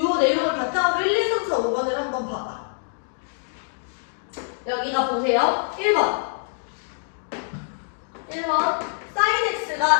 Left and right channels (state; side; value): silent; right; digital silence